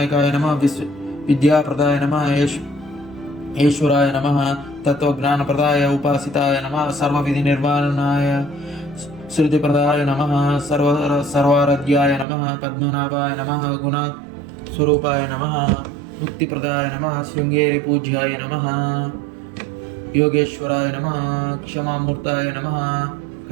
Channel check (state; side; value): drops out; left; at 12.2 s